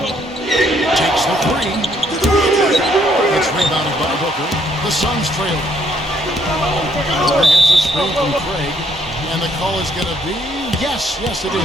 Takes the 3. It's rebounded by Booker. The Suns trail. Booker gets a screen from Craig. And the call is going to be, yes, it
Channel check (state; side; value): normal; both; correlation 0.69